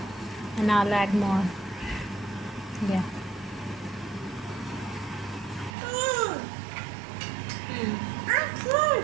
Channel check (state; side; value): drops out; left; at 5.8 s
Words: and I'll add more. Yeah.